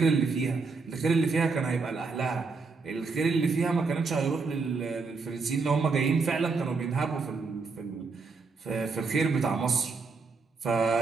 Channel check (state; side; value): quieter; left; 4.4 dB